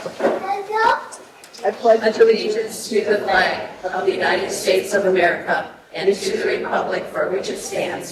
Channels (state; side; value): identical; both; correlation 1.00